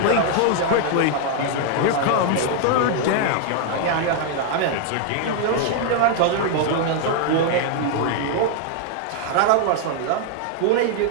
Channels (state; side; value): different; both; correlation 0.00